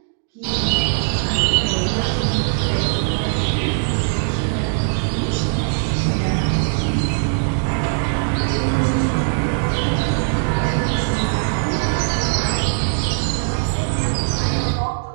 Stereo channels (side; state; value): left; silent; digital silence